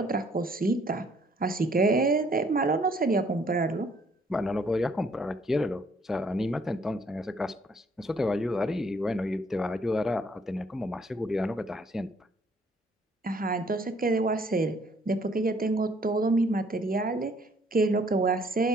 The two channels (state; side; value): normal; both; correlation 0.63